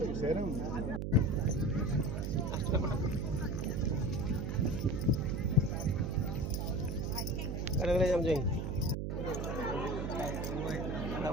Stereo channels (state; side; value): noise; right; hum, 2 dB below the sound